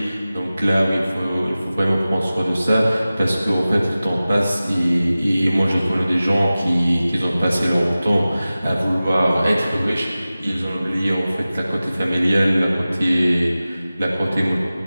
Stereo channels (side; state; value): both; inverted; correlation -0.96